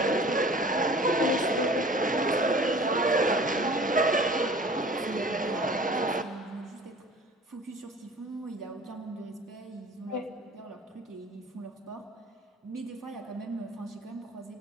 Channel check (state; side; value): normal; both; correlation 0.45